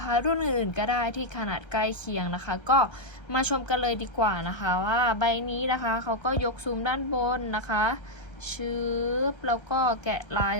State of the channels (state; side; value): late; right; 1.3 ms